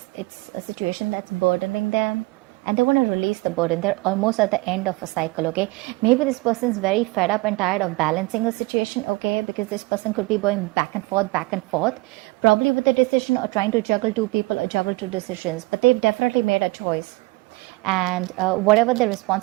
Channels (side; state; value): left; quieter; 23.5 dB